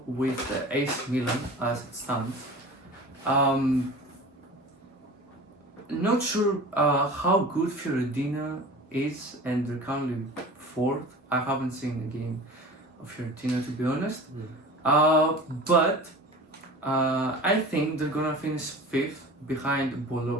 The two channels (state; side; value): normal; both; correlation 0.38